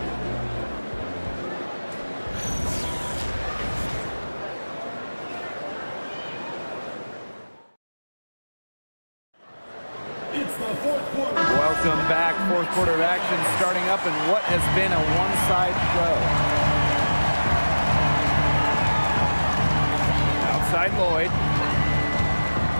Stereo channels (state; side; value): inverted; both; correlation -1.00